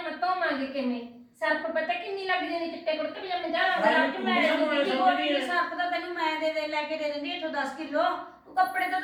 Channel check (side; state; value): both; identical; correlation 1.00